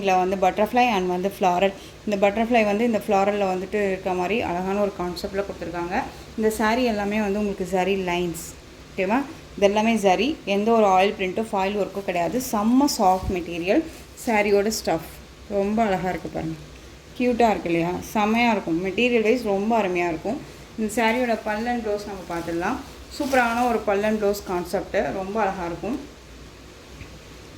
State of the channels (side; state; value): both; identical; correlation 1.00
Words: வந்து பட்டர்ஃப்ளை அண்ட் வந்து ஃப்ளாரல். இந்த பட்டர்ஃப்ளை வந்து இந்த ஃப்ளாரலில் வந்துட்டு இருக்க மாதிரி அழகான ஒரு கான்செப்டில் கொடுத்துருக்காங்க. இந்த சாரீ எல்லாமே வந்து உங்களுக்கு சரி லைன்ஸ், ஓகேவா? இதெல்லாமே சரி, எந்த ஒரு ஆயில் பிரிண்ட்டோ ஃபாயில் ஒர்க்கும் கிடையாது. செம்ம சாஃப்ட் மெட்டீரியல். சாரியோட ஸ்டஃப் ரொம்ப அழகாக இருக்குது பாருங்கள், க்யூட்டாக இருக்குது இல்லையா? செம்மையாக இருக்கும். மெட்டீரியல் வைஸ் ரொம்ப அருமையாக இருக்கும். இந்த சாரியோட பல்லன் ப்ளவுஸ் நம்ம பார்த்துடலாம். சூப்பரான ஒரு பல்லன் ப்ளவுஸ் கான்செப்ட்டு, ரொம்ப அழகாக இருக்கும்.